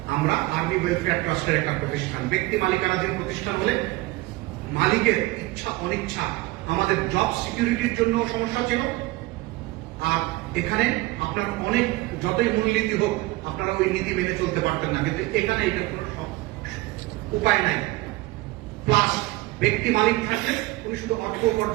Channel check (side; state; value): left; quieter; 20.4 dB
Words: আমরা আর্মি ওয়েলফেয়ার ট্রাস্টের একটা প্রতিষ্ঠান। ব্যক্তি মালিকানাধীন প্রতিষ্ঠান হলে মালিকের ইচ্ছা অনিচ্ছা আমাদের জব সিকিউরিটির জন্য সমস্যা ছিল। আর এখানে আপনার অনেক যতই মূলনীতি হোক আপনারা ওই নীতি মেনে চলতে পারতেন না, কিন্তু এখানে এটার কোনো উপায় নাই। প্লাস ব্যক্তি মালিক থাকলে উনি শুধু অর্থ